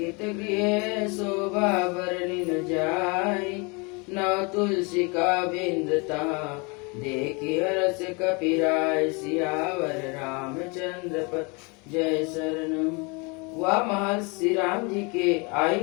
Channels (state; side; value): quieter; right; 30.3 dB